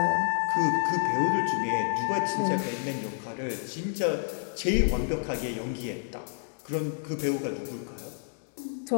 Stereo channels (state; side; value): silent; right; digital silence